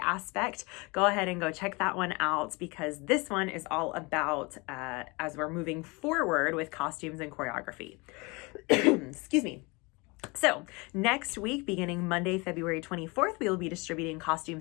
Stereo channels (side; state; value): right; quieter; 27.0 dB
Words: go ahead and go check that one out, because this one is all about as we're moving forward with costumes and choreography. Excuse me. So next week, beginning Monday, February 24th, we will be distributing